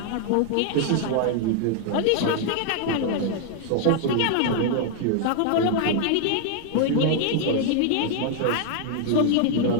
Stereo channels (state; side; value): different; both; correlation 0.00